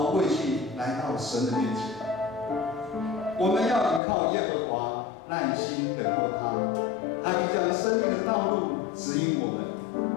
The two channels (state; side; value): drops out; right; at 4.0 s